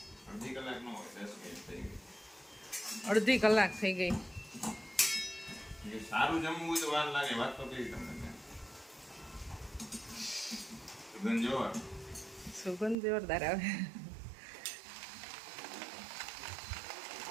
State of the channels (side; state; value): left; drops out; at 13.0 s